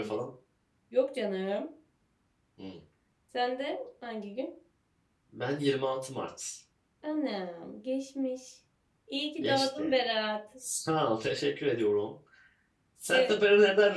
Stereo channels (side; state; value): both; identical; correlation 1.00